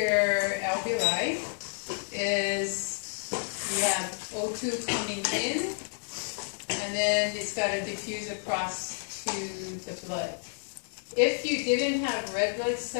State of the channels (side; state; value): right; silent; digital silence